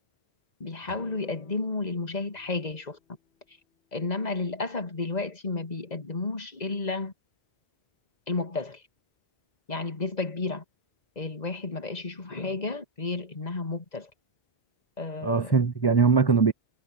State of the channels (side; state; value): right; late; 2.0 ms